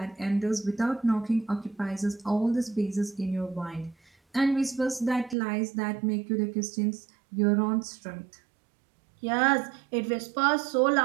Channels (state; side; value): drops out; left; at 5.4 s